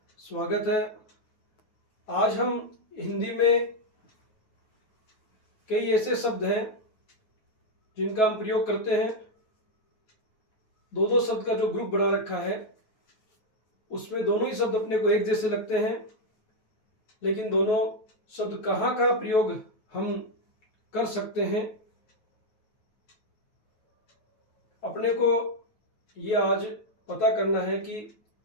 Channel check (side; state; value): right; late; 9.3 ms